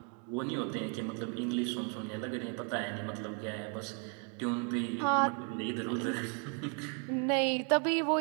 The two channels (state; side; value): quieter; left; 36.9 dB